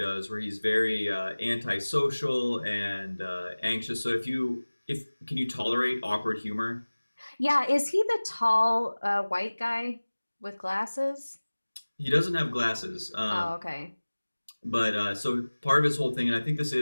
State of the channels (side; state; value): both; inverted; correlation -1.00